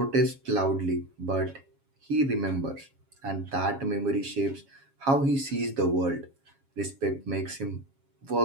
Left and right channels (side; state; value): left; late; 7.3 ms